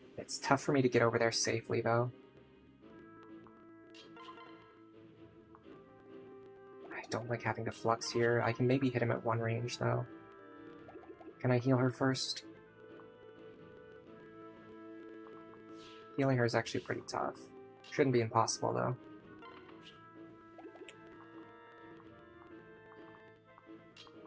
It's tough for me to get over there safely, though. I don't like having to flux here. I can maybe hit him at one range, though. Can I heal her first? Healing her is actually pretty tough. Shouldn't be impossible, though.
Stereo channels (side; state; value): both; identical; correlation 1.00